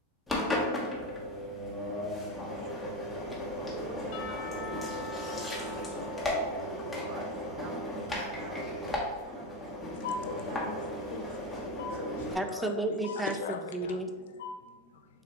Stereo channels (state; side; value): normal; both; correlation 0.18